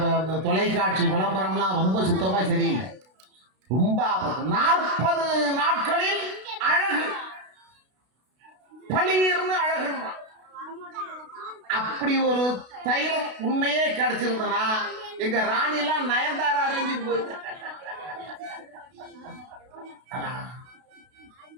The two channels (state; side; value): late; left; 32 ms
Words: தொலைக்காட்சி விளம்பரம்லாம் ரொம்ப சுத்தமா சரியில்லை, ரொம்ப ஆபத்து. 40 நாட்களில் அழகு, பளீர்னு அழகு. அப்படி ஒரு தைலம் உண்மையே கிடைச்சிருந்தனா எங்க ராணிலாம் நயன்தாரா அரேஞ்சுக்கு போயிட்டு